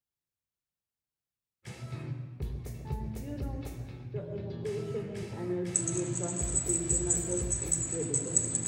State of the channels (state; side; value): identical; both; correlation 1.00